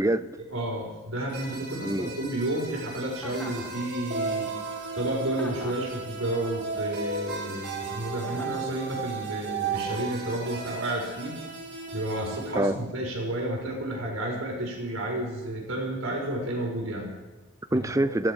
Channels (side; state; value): both; normal; correlation 0.31